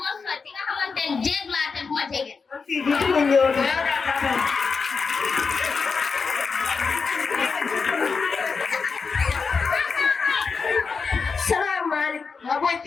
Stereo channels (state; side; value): quieter; right; 5.1 dB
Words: ma sori di nga xamante ni jéeg laa te du ma jege. Man fii du ci ma ñëw de. Yow daa taxaw. Salaamaaleykum. Waaw booy